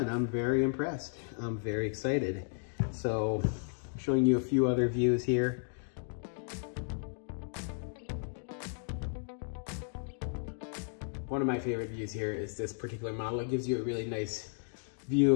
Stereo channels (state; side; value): silent; right; 55 dB below the other